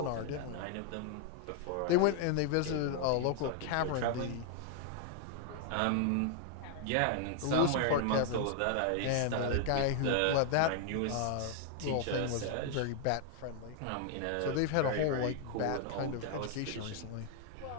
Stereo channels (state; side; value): different; both; correlation 0.00